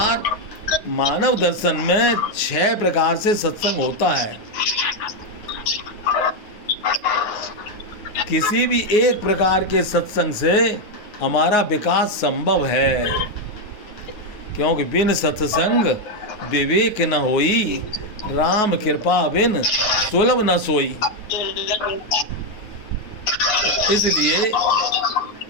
मानव दर्शन में 6 प्रकार से सत्संग होता है। किसी भी एक प्रकार के सत्संग से हमारा विकास संभव है, क्योंकि बिन सत्संग विवेक न होई, राम कृपा बिन सुलभ न सोई। इसलिए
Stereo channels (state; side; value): late; right; 9.4 ms